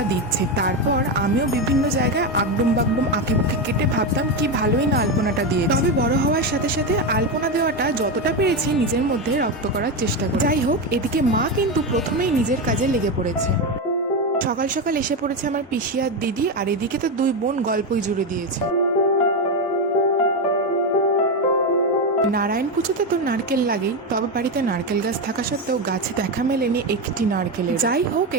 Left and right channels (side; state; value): both; normal; correlation 0.12